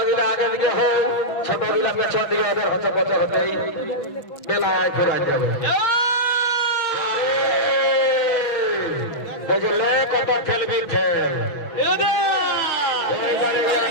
গিলা আগে দিকে হোক ছোট গিলা পেছন দিকে ওদের হচ্ছে বছর হতেই বেলায় ঘুরাই যাবে বুঝলে কত খেলবি খেল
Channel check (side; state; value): right; late; 6.0 ms